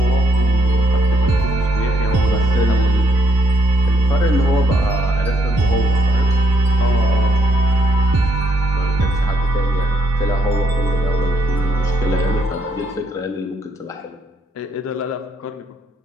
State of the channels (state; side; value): normal; both; correlation 0.73